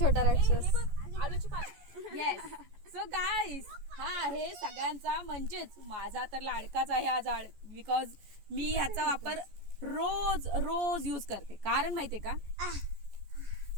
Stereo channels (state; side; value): late; left; 14 ms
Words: राक्षस. आलूची पानं. येस. सो गाईस, हा आहे सगळ्यांचा म्हणजेच माझा तर लाडकाच आहे हा झाड, बिकॉज मी ह्याचा वापर रोज रोज यूज करते. कारण माहितीये का,